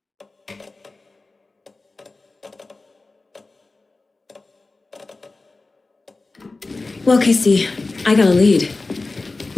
Well, Casey, I got a lead.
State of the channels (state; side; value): quieter; right; 3.5 dB